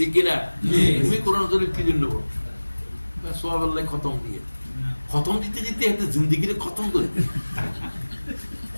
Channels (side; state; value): both; inverted; correlation -1.00